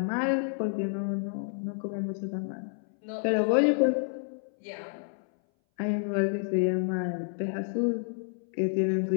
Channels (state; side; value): silent; right; 58 dB below the other